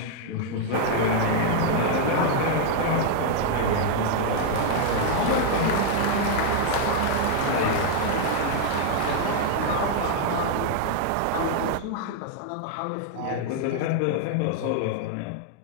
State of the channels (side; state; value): both; different; correlation 0.00